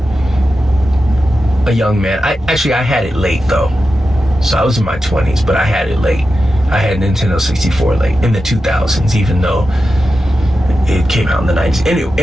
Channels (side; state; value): both; normal; correlation 0.91